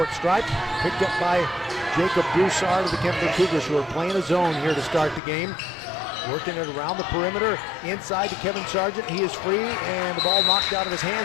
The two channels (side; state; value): right; drops out; at 5.2 s